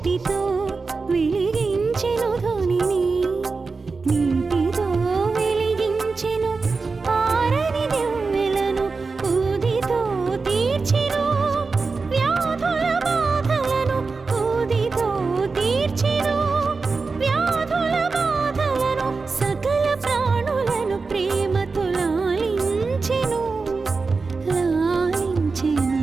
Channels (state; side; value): quieter; left; 4.3 dB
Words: వెలిగించెను ధ్వనిని, నీటితో వెలిగించెను ఆరని దివ్వెలను. ఊదితో తీర్చెను వ్యాధుల బాధలను, ఊదితో తీర్చెను వ్యాధుల బాధలను. సకల ప్రాణులను ప్రేమతో లాలించెను, లాలించెను.